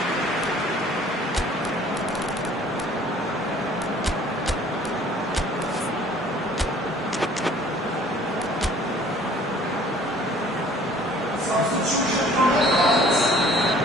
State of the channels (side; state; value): both; normal; correlation 0.53